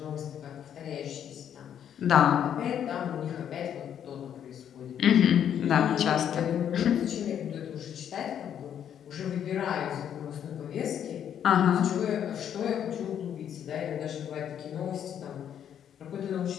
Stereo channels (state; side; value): quieter; right; 9.3 dB